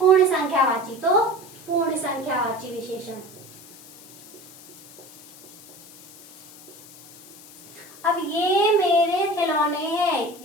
संख्यावाची, तो पूर्ण संख्यावाची विशेषण। अब ये मेरे खिलौने हैं,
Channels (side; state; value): left; noise; hiss, 20 dB below the sound